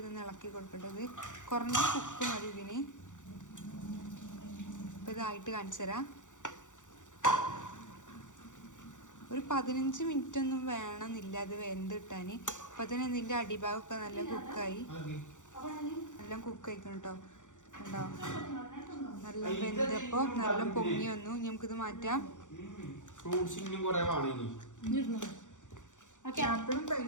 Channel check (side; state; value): right; late; 0.86 ms